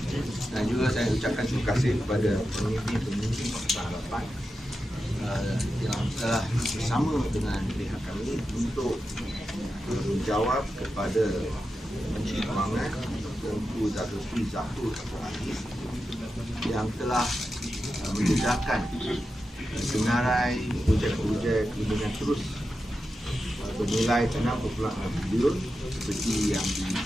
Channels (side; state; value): both; normal; correlation 0.90